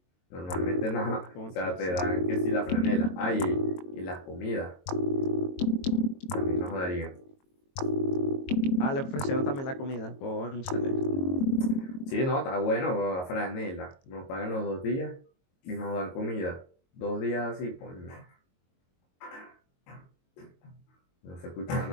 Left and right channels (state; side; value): late; right; 22 ms